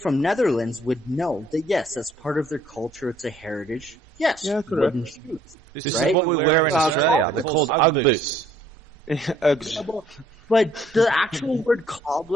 Netherlands would know that, yes, that's part of their culture. It's a heritage. Yes, wooden shoes. This is what we wear in Australia. They're called Ugg boots. But the actual word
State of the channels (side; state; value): both; normal; correlation 0.62